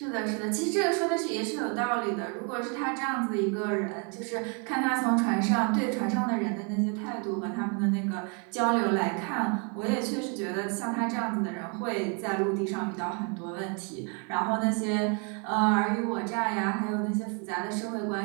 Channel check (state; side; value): quieter; left; 35.5 dB